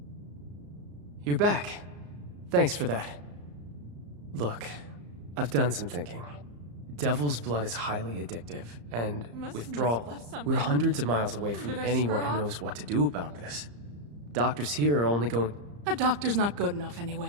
You're back. Thanks for that. Look, I've done some thinking. Devil's blood is highly addictive, and withdrawal. We're hundreds of miles away from anyone who knows what to do about this. Doctors here are only going... A doctor's not good enough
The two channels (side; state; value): left; late; 34 ms